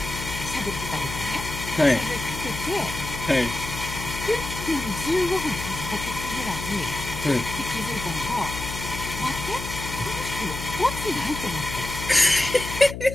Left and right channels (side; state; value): left; noise; hum, 7 dB below the sound